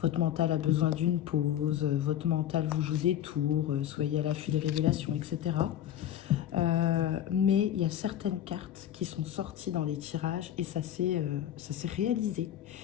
votre mental a besoin d'une pause, votre mental vous joue des tours, soyez à l'affût des révélations, etc. Mais il y a certaines cartes qui sont sorties dans les tirages et ça s'est réalisé.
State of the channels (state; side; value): quieter; right; 10.9 dB